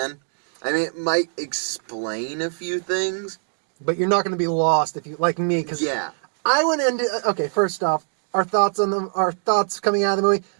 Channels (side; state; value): left; silent; digital silence